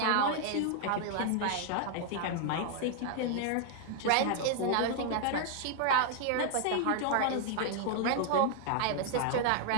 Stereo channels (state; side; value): different; both; correlation 0.00